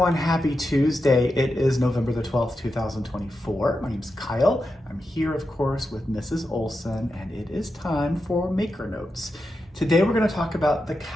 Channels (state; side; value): normal; both; correlation 0.88